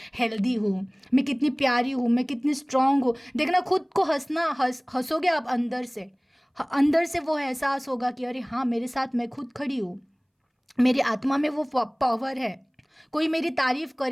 हेल्दी हूँ, मैं कितनी प्यारी हूँ, मैं कितनी स्ट्रांग हूँ। देखना खुद को हंसोगे आप अंदर से। अंदर से वो एहसास होगा कि अरे हाँ, मेरे साथ मैं खुद खड़ी हूँ, मेरी आत्मा में वो पावर है। कोई मेरी तारीफ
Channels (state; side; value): identical; both; correlation 1.00